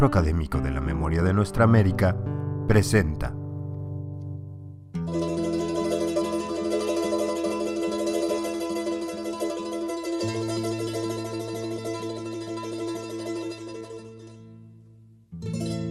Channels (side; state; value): both; identical; correlation 1.00